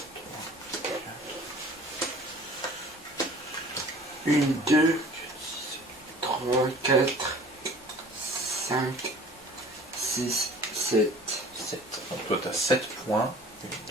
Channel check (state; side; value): normal; both; correlation 0.47